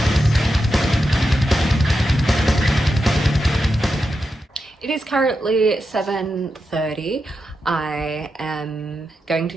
It is currently 7:30. I am going to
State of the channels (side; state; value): both; normal; correlation 0.88